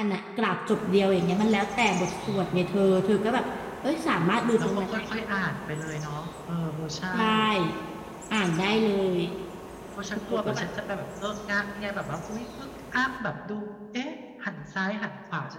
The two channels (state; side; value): identical; both; correlation 1.00